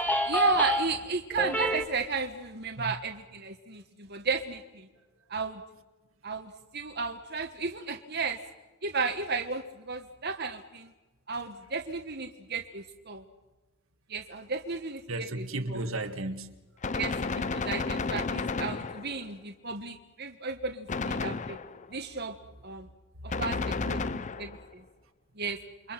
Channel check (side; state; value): both; normal; correlation 0.02